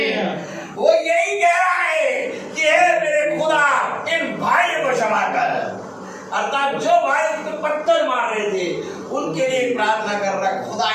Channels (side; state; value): both; identical; correlation 1.00